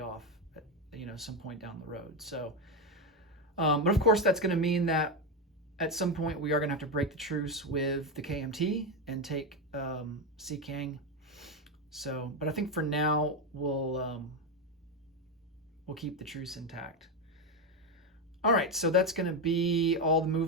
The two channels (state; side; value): normal; both; correlation 0.10